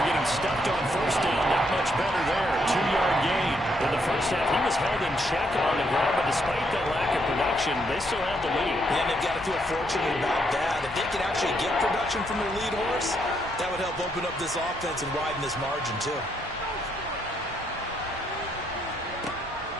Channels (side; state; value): both; normal; correlation 0.75